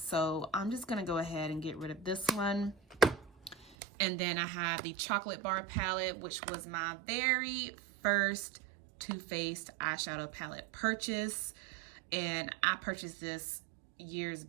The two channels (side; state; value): left; drops out; at 3.8 s